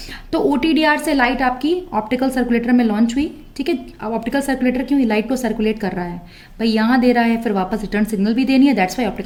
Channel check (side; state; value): both; identical; correlation 1.00